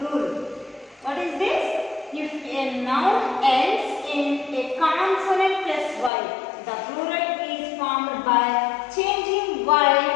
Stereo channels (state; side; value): drops out; right; at 6.1 s